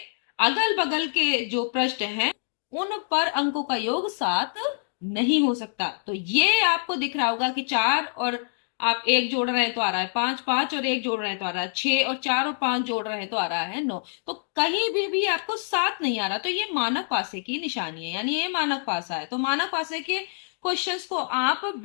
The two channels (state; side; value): silent; right; digital silence